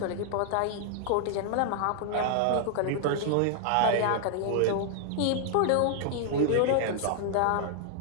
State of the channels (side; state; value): both; different; correlation -0.01